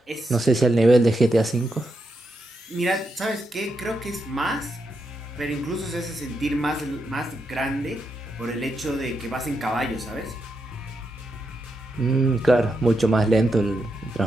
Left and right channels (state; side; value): normal; both; correlation 0.84